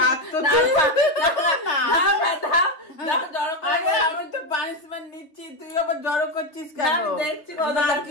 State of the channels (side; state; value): right; late; 3.3 ms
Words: রাখতো আমি তো পানিশমেন্ট নিচ্ছি, তুই আবার জড়ো করছিস কেন? দেখছি